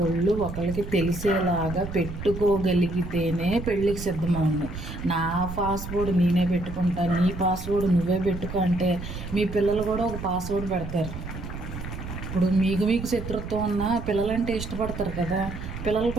ఒకళ్ళకి తెలిసేలాగా పెట్టుకోగలిగితేనే పెళ్ళికి సిద్ధమవును. నా పాస్వర్డ్ నేనే పెట్టుకుంటా, నీ పాస్వర్డ్ నువ్వే పెట్టుకో అంటే మీ పిల్లలు కూడా ఒక పాస్వర్డ్ పెడతారు. ఇప్పుడు మీకు శత్రుత్వం ఉన్న పిల్లలంటే ఇష్టపడతారు కదా, పిల్లలు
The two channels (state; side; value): noise; right; rumble, 9 dB below the sound